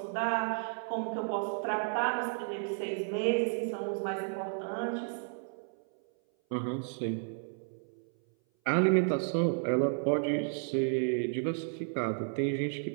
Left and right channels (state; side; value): silent; left; 56 dB below the other